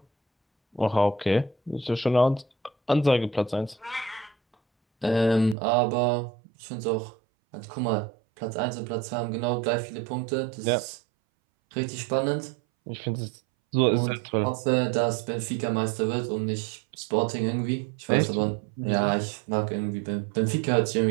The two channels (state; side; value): drops out; left; at 5.6 s